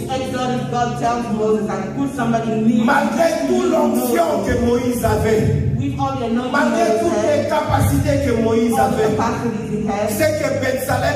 Malgré toute l'onction que Moïse avait, malgré toutes les capacités que Moïse avait, c'est que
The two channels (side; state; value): both; identical; correlation 1.00